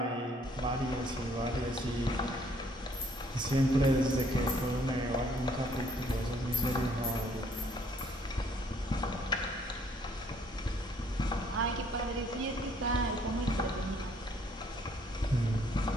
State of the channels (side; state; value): both; normal; correlation 0.63